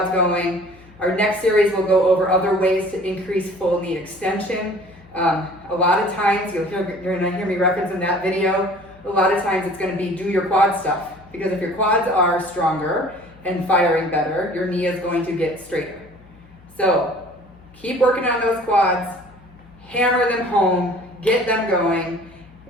going. Our next series will go over other ways to increase full knee extension. A lot of times, you're going to hear me reference in that video, a lot of times it's going to be do your quad stuff, because if your quads are stronger and firing better, your knee is going to get straighter. So keep working on those quads, hammer them home, get them going,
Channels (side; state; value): left; noise; hum, 25 dB below the sound